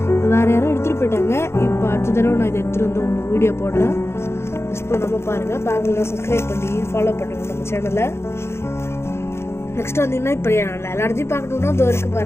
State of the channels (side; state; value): right; late; 0.12 ms